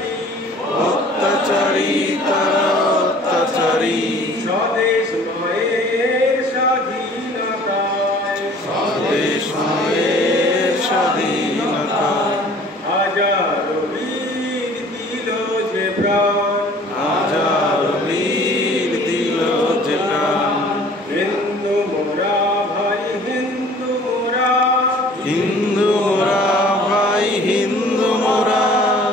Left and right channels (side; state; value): both; normal; correlation 0.51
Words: অত্যাচারী তারা অত্যাচারী। স্বদেশ মায়ের স্বাধীনতায়, স্বদেশ মায়ের স্বাধীনতায়। হাজারো বীর দিল যে প্রাণ, হাজার বীর দিল যে প্রাণ। হিন্দু মোরা ভাই হিন্দু মোরা, হিন্দু মোরা ভাই হিন্দু মোরা।